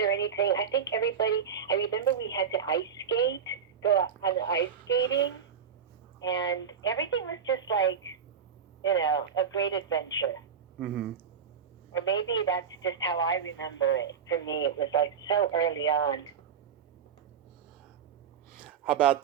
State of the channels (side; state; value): left; quieter; 7.2 dB